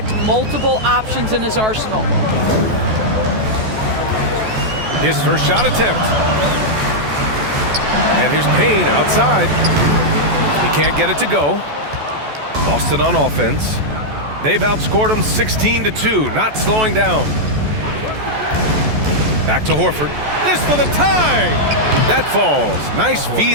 multiple options in his arsenal. His first shot attempt. And here's Payne outside. He can't get it to go. Boston on offense. They've outscored him 16-2, not slowing down. Back to Horford. This for the tie! That falls. Nice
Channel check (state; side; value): late; left; 14 ms